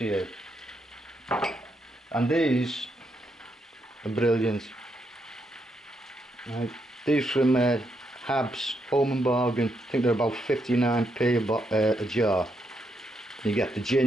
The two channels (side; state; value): both; normal; correlation 0.80